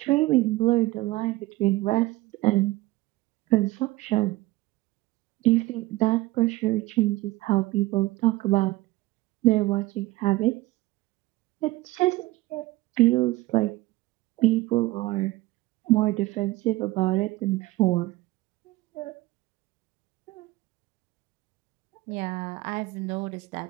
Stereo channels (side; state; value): left; quieter; 19.0 dB